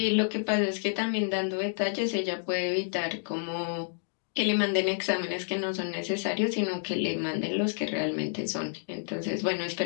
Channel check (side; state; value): right; silent; digital silence